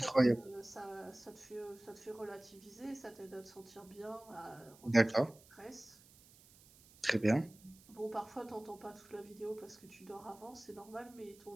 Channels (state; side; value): noise; right; hiss, 24 dB below the sound